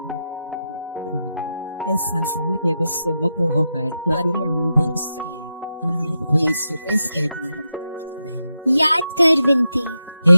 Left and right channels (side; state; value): both; inverted; correlation -0.87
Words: इस संसार के विष से मुक्त होकर तुम्हारी अनुभव सके। याद कर विनती।